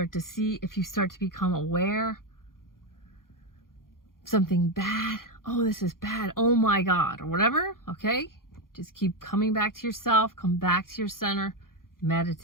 to become aware something bad, oh, this is bad, oh my God, or whatever, okay? Just keep coming back to yourself, come back to your center,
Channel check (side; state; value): right; late; 0.91 ms